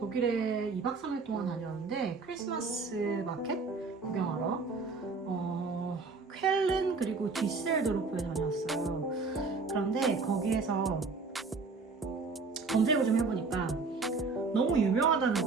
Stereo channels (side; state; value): left; quieter; 4.2 dB